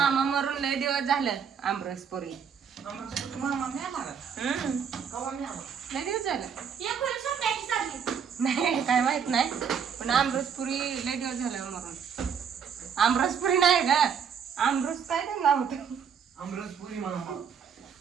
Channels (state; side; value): quieter; left; 7.2 dB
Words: मरून लय दिवस झालं. आमरसपुरी लय दिवस झालं नाही काय माहित नाही पण आमरसपुरी लय दिवस झालं मरून. आमरसपुरी नाही ग आमरस काय त्यांना होत आमरसपुरी मामा.